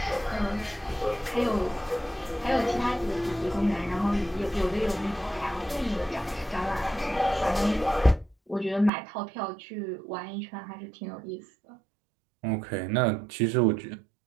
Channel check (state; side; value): drops out; left; at 8.9 s